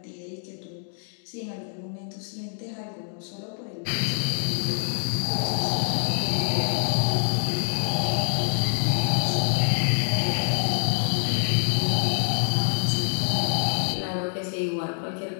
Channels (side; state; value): right; silent; digital silence